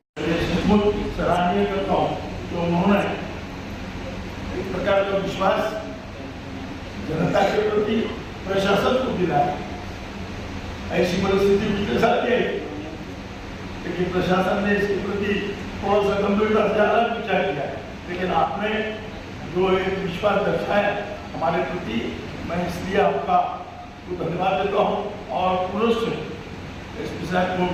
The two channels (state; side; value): identical; both; correlation 1.00